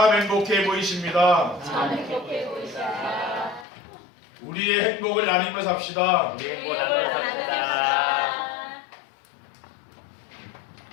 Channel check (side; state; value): right; drops out; at 3.7 s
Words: 행복해 보이십니다. 참 행복해 보이시다. 우리의 행복을 나누며 삽시다. 행복 나눠 삽시다.